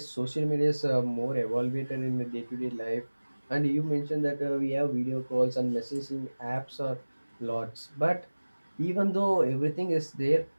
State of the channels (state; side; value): inverted; both; correlation -1.00